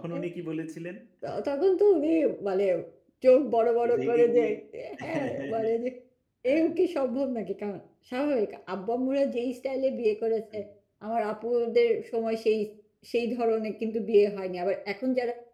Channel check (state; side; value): identical; both; correlation 1.00